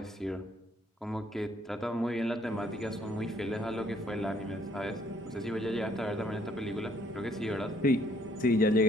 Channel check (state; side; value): normal; both; correlation 0.64